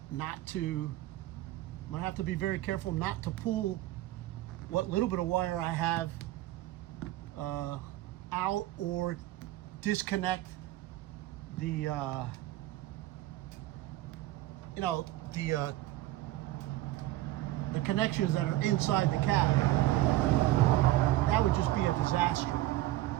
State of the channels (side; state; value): left; quieter; 16.1 dB